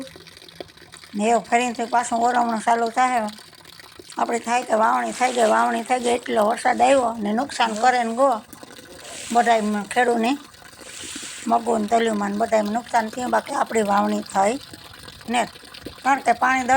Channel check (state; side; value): identical; both; correlation 1.00